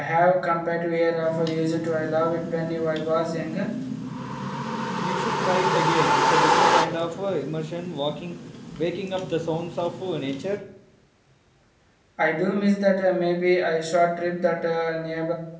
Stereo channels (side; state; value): both; identical; correlation 1.00